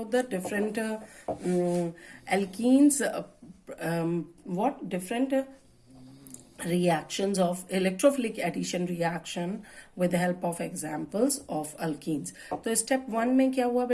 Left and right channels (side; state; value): both; identical; correlation 1.00